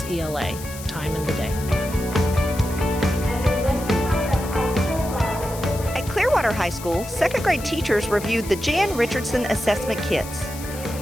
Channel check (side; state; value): left; noise; hiss, 13 dB below the sound